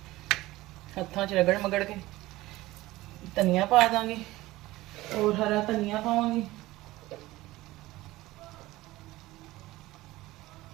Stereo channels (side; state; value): left; quieter; 18.1 dB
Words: ਹੱਥਾਂ 'ਚ ਰਗੜ ਮਗੜ ਕੇ। ਧਨੀਆ ਪਾ ਦਾਂਗੀ, ਔਰ ਹਰਾ ਧਨੀਆ ਪਾਵਾਂਗੀ।